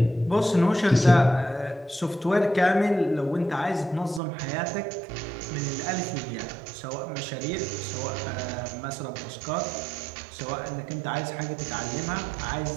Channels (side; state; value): left; drops out; at 4.2 s